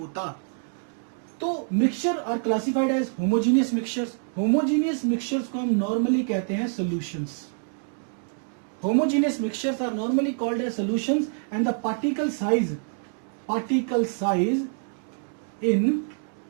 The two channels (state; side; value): silent; left; 58 dB below the other